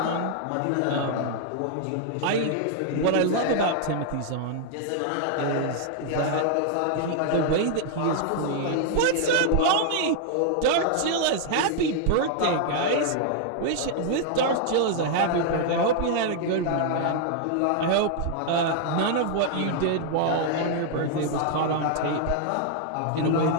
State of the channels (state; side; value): different; both; correlation 0.00